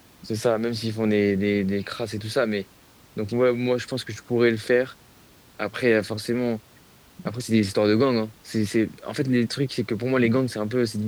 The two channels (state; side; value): identical; both; correlation 1.00